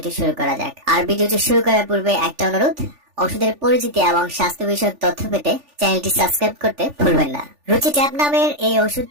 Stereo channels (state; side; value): late; left; 3.4 ms